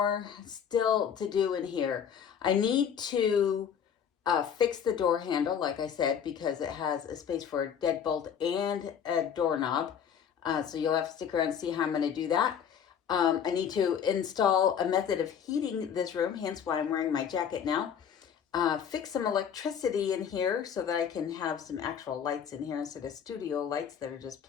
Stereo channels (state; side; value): quieter; right; 8.0 dB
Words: still to do in here. I need to fix the door handle, like I said, because it has a space for a deadbolt and a doorknob. So you'll have to stick around and see how I'm going to do that. I need to install a method of heating this room, hence why I'm wearing my jacket now. Fix some electricity in here so that I can have some actual lights in here instead of studio lights that are just